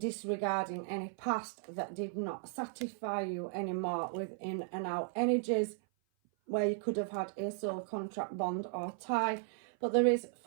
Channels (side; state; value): left; silent; 54 dB below the other